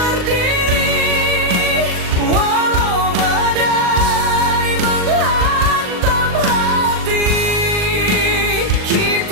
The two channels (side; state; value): left; late; 39 ms